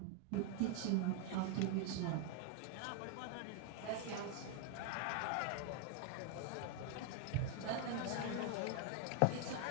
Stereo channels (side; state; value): both; different; correlation 0.00